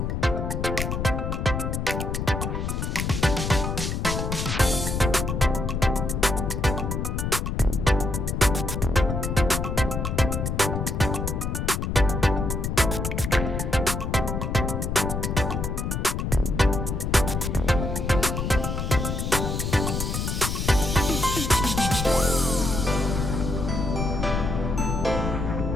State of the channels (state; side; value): noise; left; rumble, 2 dB below the sound